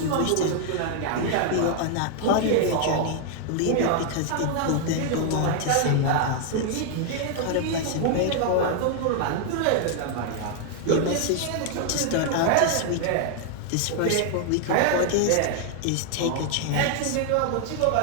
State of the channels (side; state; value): both; different; correlation 0.00